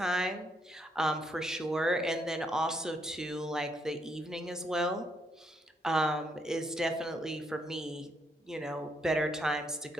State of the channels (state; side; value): normal; both; correlation 0.74